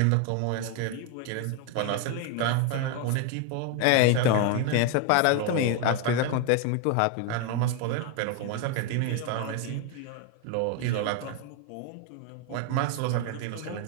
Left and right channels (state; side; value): different; both; correlation 0.01